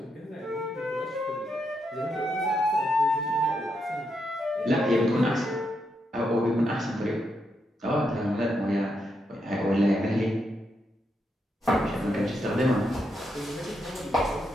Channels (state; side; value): normal; both; correlation 0.82